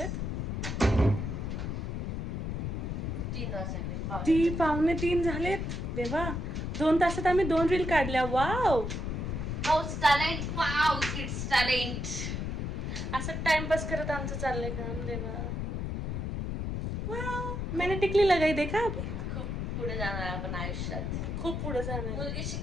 2:45 झालेत. देवा, 2 तासात आम्ही 2 रील काढल्या. Wow, talent. असं टाइमपास करत आमचं चाललंय काम. देवा, वाव, मैंने टिकली लगाई. देखा, खूप पुढे जाणार आपण आयुष्यात, खूप पुढे जाणार. मुलगी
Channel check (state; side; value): noise; left; rumble, 3 dB below the sound